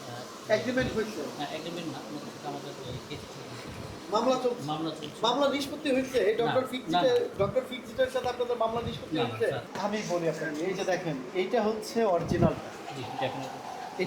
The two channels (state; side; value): identical; both; correlation 1.00